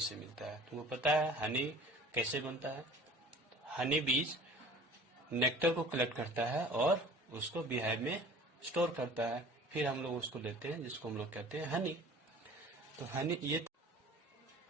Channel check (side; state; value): both; normal; correlation 0.46